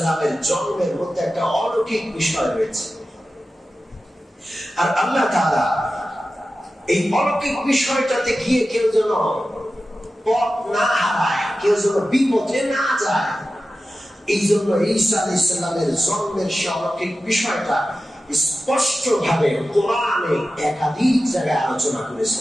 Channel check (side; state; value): both; normal; correlation 0.94